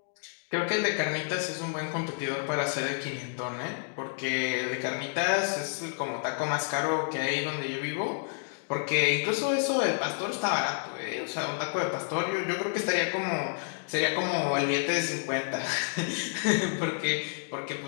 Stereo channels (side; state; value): right; silent; 58 dB below the other